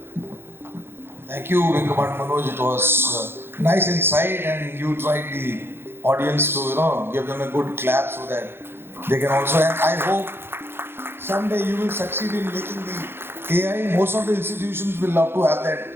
Thank you, Kumar, Manoj. It was nice insight, and you tried the audience to, give them a good clap so that they can also. And I hope someday you will succeed in making the AI. Most of the institutions will love to have that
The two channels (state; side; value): late; left; 0.11 ms